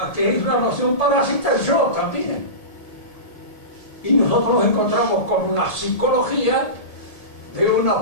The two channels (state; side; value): late; right; 1.8 ms